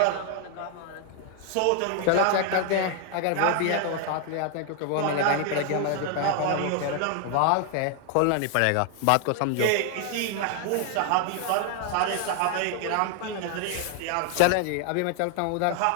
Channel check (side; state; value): both; different; correlation 0.00